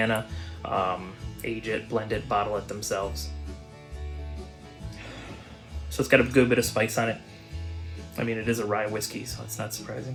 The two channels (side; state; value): both; identical; correlation 1.00